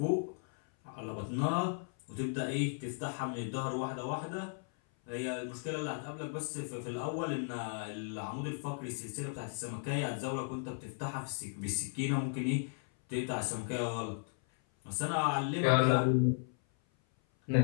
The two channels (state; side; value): silent; right; 54 dB below the other